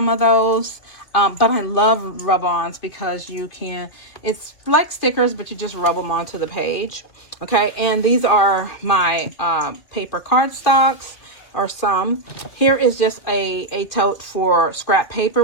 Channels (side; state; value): right; late; 2.4 ms